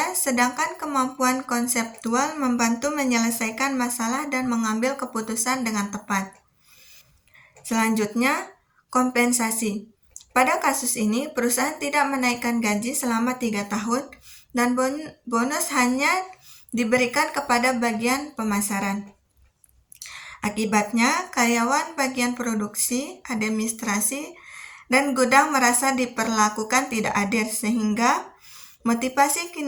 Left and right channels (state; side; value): identical; both; correlation 1.00